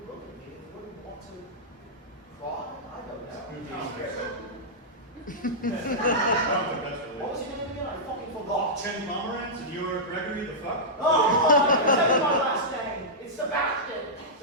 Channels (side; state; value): both; normal; correlation -0.12